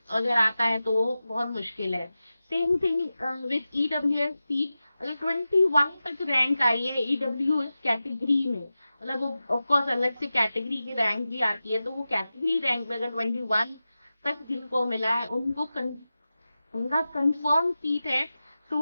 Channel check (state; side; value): inverted; both; correlation -0.94